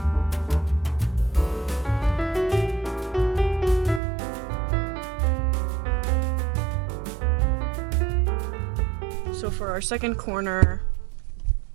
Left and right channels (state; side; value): drops out; left; at 4.0 s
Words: Our second corner,